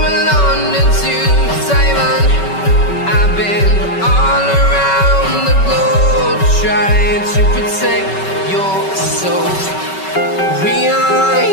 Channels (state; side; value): late; right; 5.3 ms